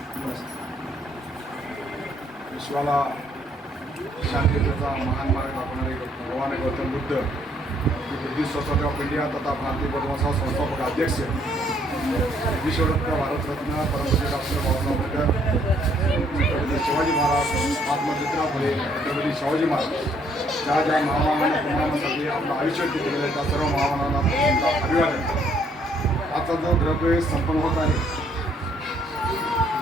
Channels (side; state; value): both; normal; correlation 0.67